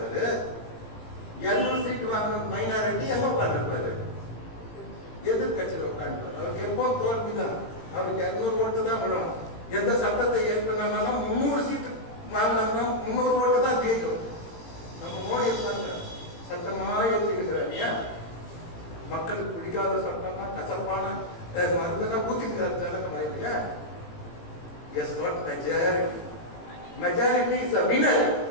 200 சீட் வாங்கணும் மைனாரிட்டி எங்க உட்கார்ந்துருப்பாரு? எதிர்கட்சியில் உட்கார்ந்து. அவருக்கு எப்போ தோல்விதான். அவருக்கு 200 ஓட்டு தான் விடும். எந்த சட்டத்தை ஏற்கனாலும் 300 சீட்டு வாங்கினாங்கன்னா 300 ஓட்டு தான் ஜெயிக்கும். நம்ம மோடி இருப்பாங்க, சட்டமா ஏற்றிருக்கிறார். ஏன்? மக்களுக்கு பிடிக்காத சட்டம்னா கசப்பான மருந்தெல்லாம் ஊத்திக்கிறார். இல்லையா? Is not majority. Majority is a winner.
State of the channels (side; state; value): right; late; 18 ms